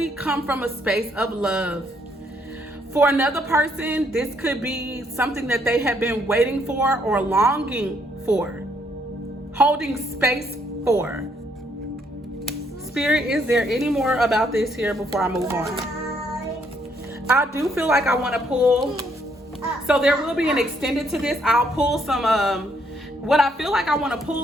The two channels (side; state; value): both; normal; correlation 0.70